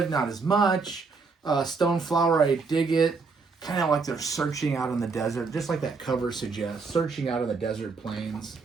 not as much. Stoneflower, I dig it. Kind of like they're searching out in the desert, just like that cover suggests, searching out in the desert plains.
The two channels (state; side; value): quieter; left; 4.6 dB